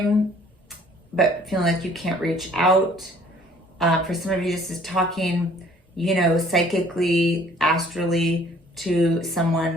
but feeling like you can't reach out. For some of you, this is talking, you know, psychically, astrally to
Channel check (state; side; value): normal; both; correlation 0.56